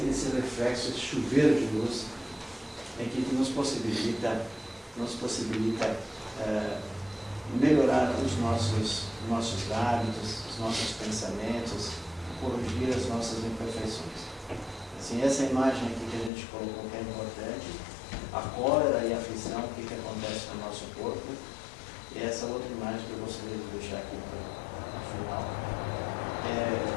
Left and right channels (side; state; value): right; drops out; at 16.3 s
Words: reflexo, esse chuveiro de luz, que nos possibilita melhorar os nossos hábitos, os nossos pensamentos, corrigir as nossas imperfeições. Assim, essa imagem aqui que a gente colocou que é importante, a cólera e a aflição, o que acontece no nosso corpo, e essa outra imagem que eu gostaria de deixar aqui no final.